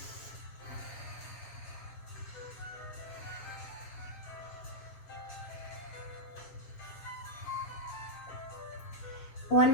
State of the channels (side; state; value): right; late; 7.3 ms